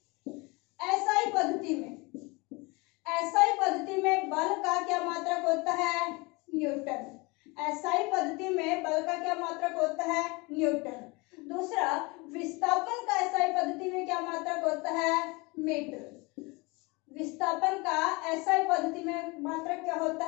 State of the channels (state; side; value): quieter; right; 26.3 dB